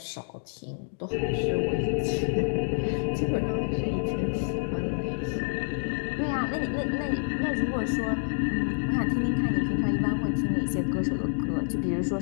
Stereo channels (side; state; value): right; silent; 59 dB below the other